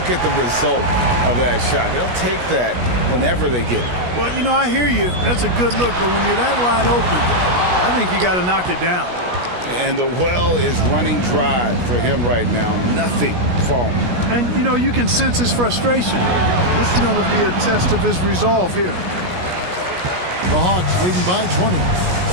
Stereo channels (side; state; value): left; late; 17 ms